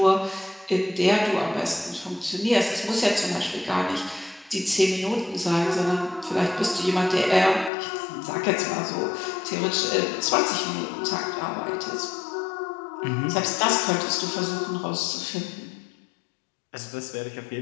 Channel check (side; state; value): right; drops out; at 7.7 s